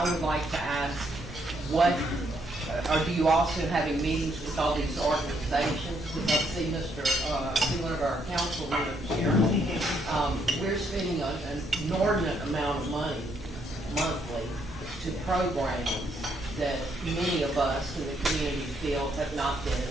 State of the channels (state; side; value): normal; both; correlation 0.73